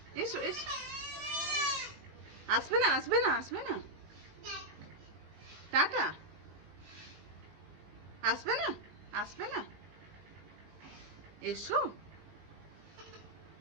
এসো এসো। আসবে না আসবে না আসবে না, টাটা। আসবে না আসবে না, এসো।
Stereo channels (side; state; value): left; late; 19 ms